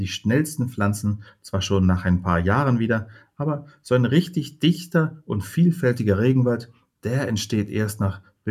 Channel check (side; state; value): both; identical; correlation 1.00